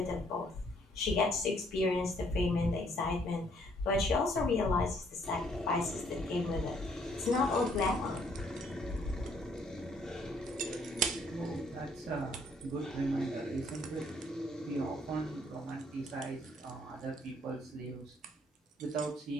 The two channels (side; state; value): both; normal; correlation 0.66